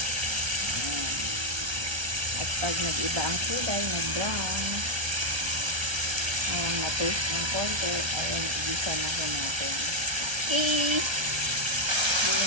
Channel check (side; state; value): left; late; 1.3 ms